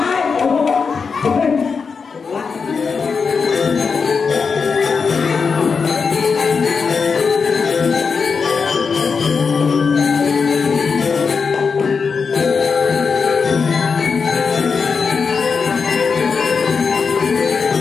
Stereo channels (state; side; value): quieter; right; 5.4 dB